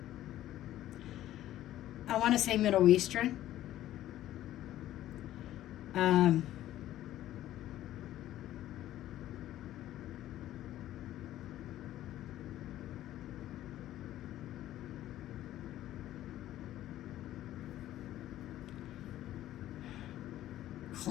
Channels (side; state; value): right; quieter; 13.5 dB